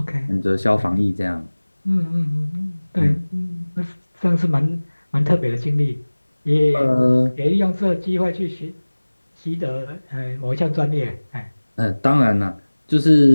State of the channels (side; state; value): both; inverted; correlation -1.00